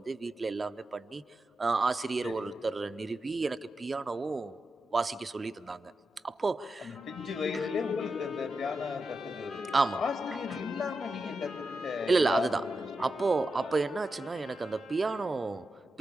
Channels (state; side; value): normal; both; correlation 0.89